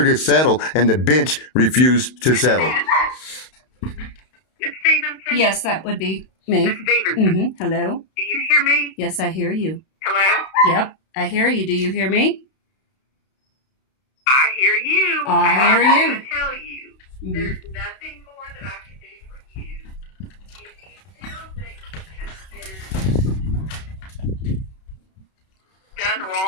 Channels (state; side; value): late; right; 32 ms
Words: to settle, and the bench refused to settle. Miss Stevenson? Yes, that would be me. Miss Stevenson, Hello? do you hear me? Yes, I hear you. Hello? Yep, I hear you. Do you hear me? I hear you. I hear I'm you. going to tell you, there's nothing more that I can do for you. If you still think you have been